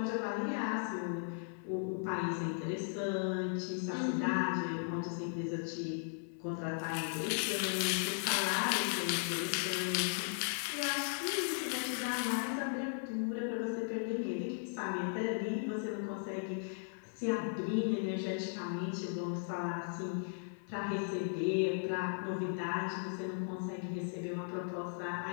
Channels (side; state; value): right; silent; 53 dB below the other